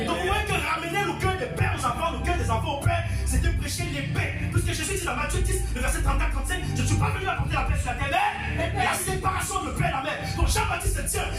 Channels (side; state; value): both; identical; correlation 1.00